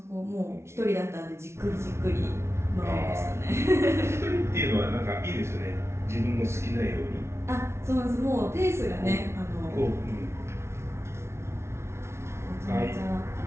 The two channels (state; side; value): late; left; 0.13 ms